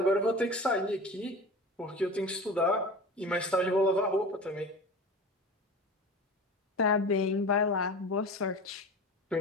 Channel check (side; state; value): both; normal; correlation 0.34